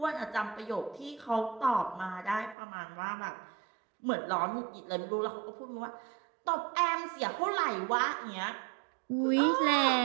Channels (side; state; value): left; drops out; at 2.6 s